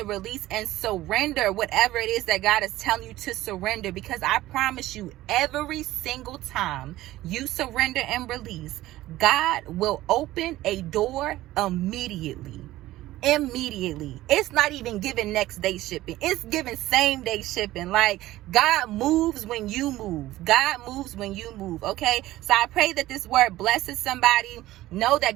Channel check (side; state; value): left; quieter; 16.1 dB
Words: release, and surrender whatever it is that God is telling you to surrender. Because I promise you, every single time you surrender and release, God will open a door immediately. It's not even giving next day shipping. It's giving same day shipping. Like, God moves when you move. God moves when you move. Okay. So I pray that this word blesses somebody. Know that